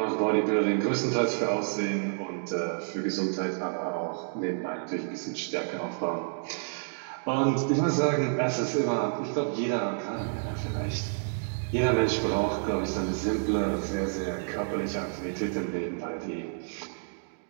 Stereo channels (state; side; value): silent; left; digital silence